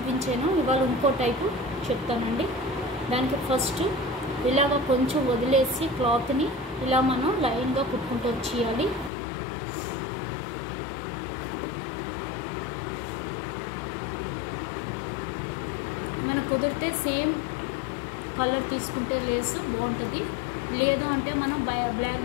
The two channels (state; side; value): drops out; right; at 9.1 s